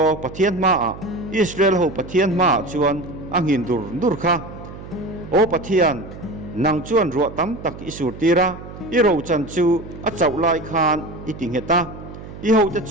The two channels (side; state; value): right; noise; hum, 14 dB below the sound